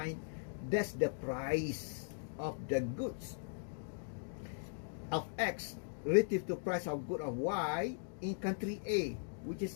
That's the price of the goods of X relative to price of good of Y in country A, which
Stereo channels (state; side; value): silent; right; digital silence